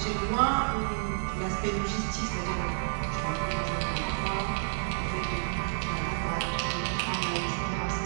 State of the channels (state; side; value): silent; left; digital silence